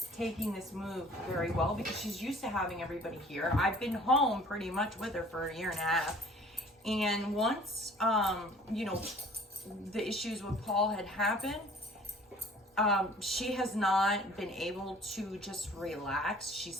taking this move very well because she's used to having everybody here. I've been home pretty much with her for a year and a half. And once, you know, the issues with Paul had happened, she has not been able to just relax. She's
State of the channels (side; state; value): both; normal; correlation 0.51